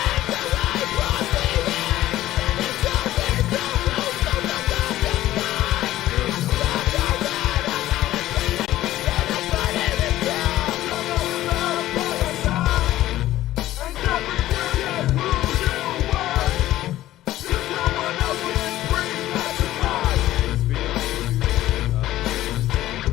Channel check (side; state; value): right; quieter; 14.6 dB